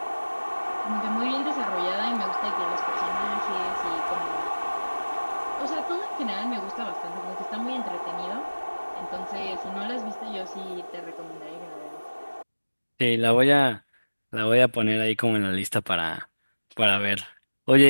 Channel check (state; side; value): inverted; both; correlation -1.00